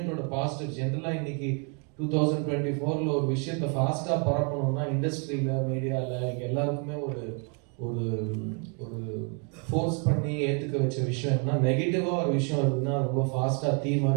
பாசிட்டிவ் ஜென்ரலாக இன்னைக்கு 2024 ஒரு விஷயத்தை ஃபாஸ்ட்டாக பரப்பணும்னா இண்டஸ்ட்ரியில், மீடியாவில் இங்கே எல்லாருக்குமே ஒரு ஒரு ஒரு ஃபோர்ஸ் பண்ணி ஏற்றுக்க வச்ச விஷயம் என்ன, நெகட்டிவாக ஒரு விஷயம் இருக்குதுன்னா ரொம்ப ஃபாஸ்ட்டாக தீ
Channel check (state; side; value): quieter; left; 38.0 dB